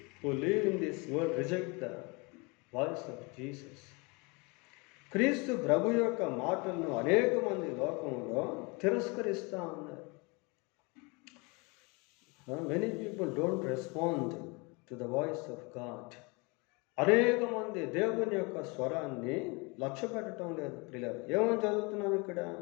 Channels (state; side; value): quieter; right; 28.8 dB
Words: who live in this world reject the voice of Jesus. క్రీస్తు ప్రభు యొక్క మాటలను అనేక మంది లోకంలో తిరస్కరిస్తూ ఉన్నారు. Many people don't respond to the voice of God. అనేక మంది దేవుని యొక్క స్వరాన్ని లక్ష్య పెట్టడం లేదు ప్రియులారా. ఏమని చదువుతున్నాం ఇక్కడ?